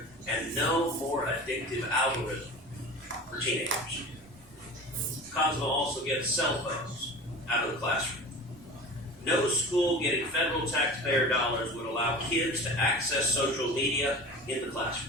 and no more addictive algorithm for teenagers. COSMA also gets cell phones out of the classroom. No school getting federal taxpayer dollars would allow kids to access social media in the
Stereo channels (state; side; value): normal; both; correlation 0.36